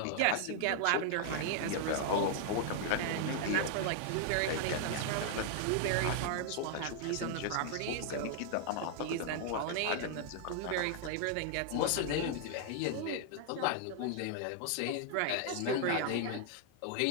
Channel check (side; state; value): both; different; correlation 0.00